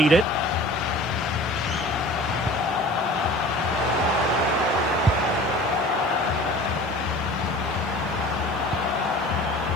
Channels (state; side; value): noise; right; hiss, 29 dB below the sound